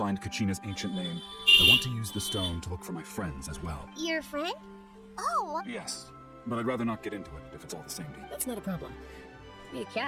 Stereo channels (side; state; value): both; identical; correlation 1.00